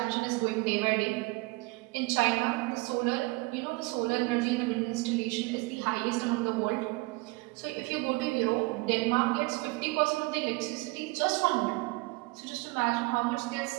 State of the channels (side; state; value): left; quieter; 24.7 dB